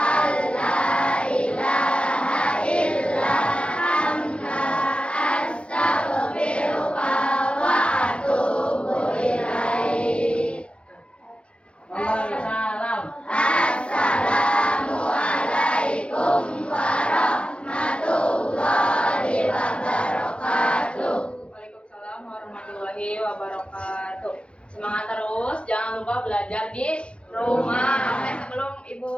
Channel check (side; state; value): right; late; 0.059 ms